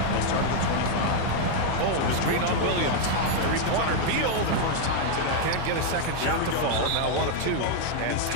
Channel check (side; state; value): both; different; correlation 0.00